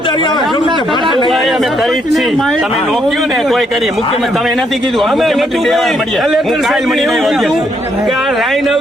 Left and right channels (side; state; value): both; normal; correlation 0.73